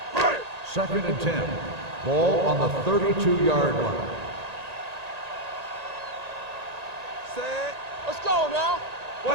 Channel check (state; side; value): late; left; 1.9 ms